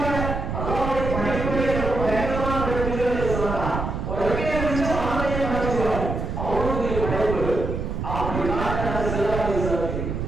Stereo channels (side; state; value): right; noise; rumble, 3 dB below the sound